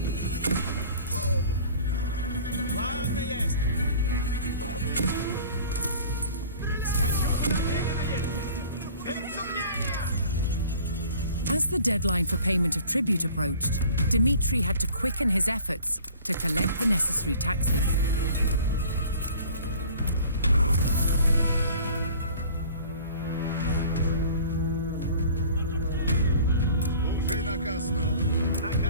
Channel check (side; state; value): both; inverted; correlation -0.47